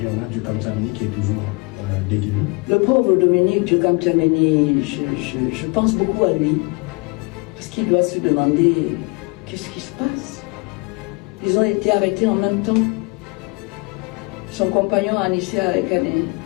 On a Djukam Djameni qui est toujours détenu. Le pauvre Dominique Djukam Djameni, je pense beaucoup à lui. Parce qu'il doit se demander qu'est-ce qui se passe. Ils ont été arrêtés en même temps. Son compagnon Anissa Kané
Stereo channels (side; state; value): right; quieter; 29.5 dB